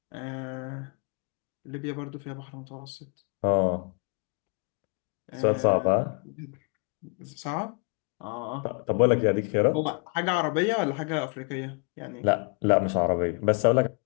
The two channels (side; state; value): right; quieter; 37.5 dB